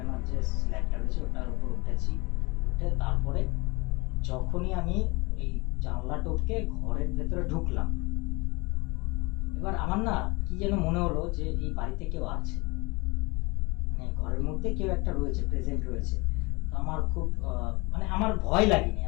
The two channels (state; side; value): quieter; right; 25.8 dB